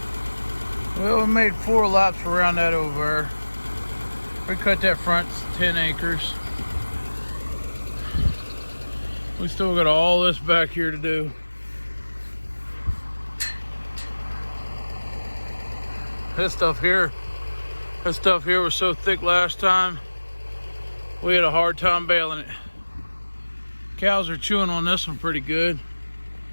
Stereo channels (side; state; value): both; inverted; correlation -1.00